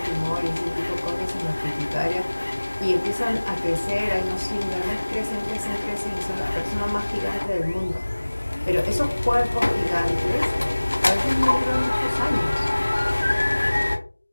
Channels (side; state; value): both; inverted; correlation -1.00